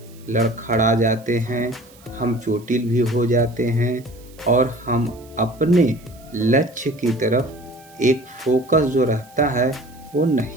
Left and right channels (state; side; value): noise; right; hiss, 26 dB below the sound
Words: लड़खड़ा जाते हैं, हम चोटिल भी हो जाते हैं और हम अपने लक्ष्य की तरफ एक फोकस जो रहता है वो